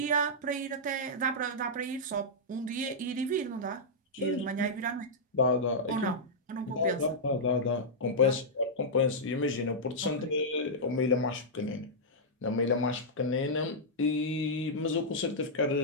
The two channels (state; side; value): normal; both; correlation -0.09